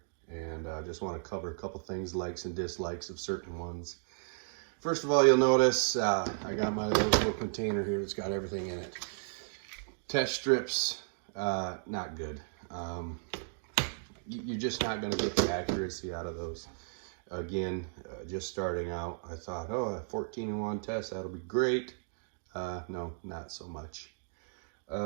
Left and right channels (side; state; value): left; silent; digital silence